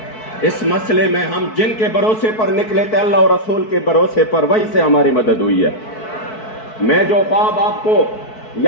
اس مسئلے میں ہم جن کے بھروسے پر نکلے تھے اللہ اور رسول کے بھروسے پر وہی سے ہماری مدد ہوئی ہے میں جو خواب آپ کو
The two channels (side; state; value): right; late; 4.6 ms